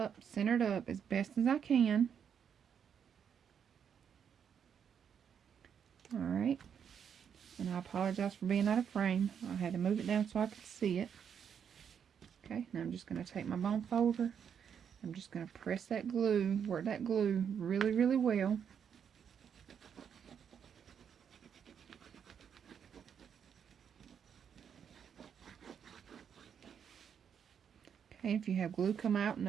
center it up as best as I can. Alright, and I apologize for being out of frame. I had to move it down so I could see it. Okay, now I'm just going to take my bone folder. I'm just going to press that glue, work that glue really, really well. Okay, if you have glue come out,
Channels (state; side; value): quieter; left; 7.8 dB